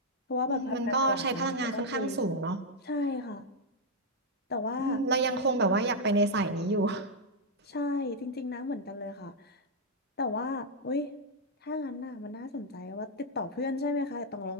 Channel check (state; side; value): normal; both; correlation -0.02